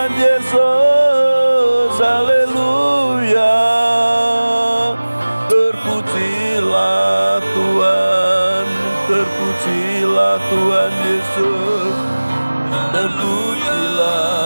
Yesus. Haleluya, terpujilah Tuhan, terpujilah Tuhan Yesus,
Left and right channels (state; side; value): inverted; both; correlation -1.00